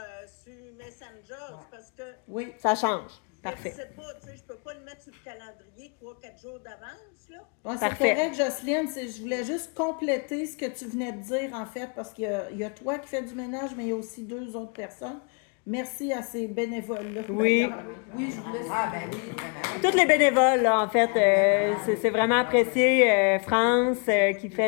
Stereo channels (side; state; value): right; quieter; 36.7 dB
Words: sur Messenger parce que... Oui, ça change. Parfait. Je sais pas, tu sais, je peux pas le mettre sur le calendrier 3-4 jours d'avance, là. Ouais, c'est correct, Jocelyne. Je voulais juste compléter ce que tu venais de dire, en fait, parce qu'il y a toi qui fais du ménage, mais il y a aussi 2 autres personnes. Merci à ces bénévoles-là. Oui. Oui, je voulais... Ah, ben oui, vraiment. Tous les bénévoles, là, en fait, c'est vraiment apprécié. France qui fait